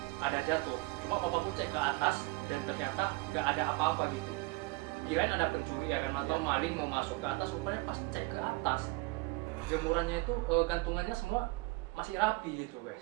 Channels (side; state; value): left; quieter; 24.2 dB